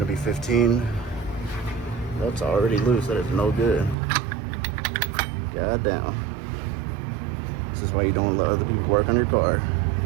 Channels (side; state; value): left; drops out; at 4.0 s